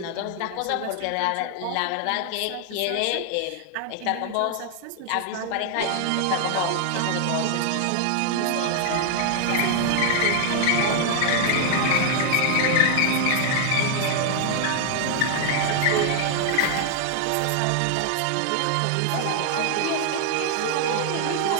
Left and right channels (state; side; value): different; both; correlation 0.00